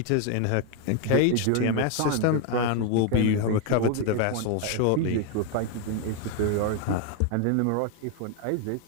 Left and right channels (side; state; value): both; different; correlation 0.01